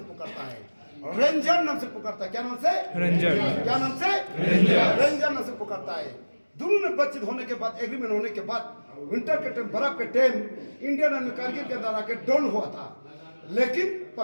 पुकारता है, रेंजर नाम से पुकारता है। क्या नाम से, रेंजर। क्या नाम से, रेंजर। रेंजर नाम से पुकारता है। दोनों ने बातचीत होने के बाद, एग्रीमेंट होने के बाद, विंटर के टाइम, बर्फ के टाइम इंडियन आर्मी कारगिल के अंदर आके डाउन हुआ था। लेकिन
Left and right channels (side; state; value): both; inverted; correlation -1.00